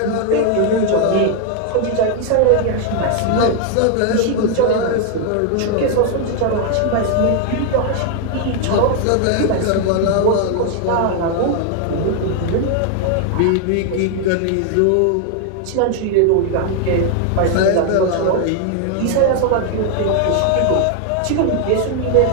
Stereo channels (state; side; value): different; both; correlation 0.00